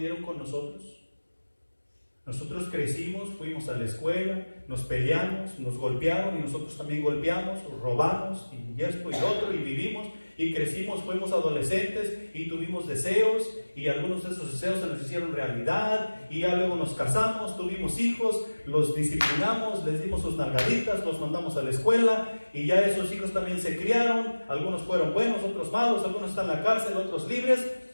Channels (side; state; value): both; inverted; correlation -1.00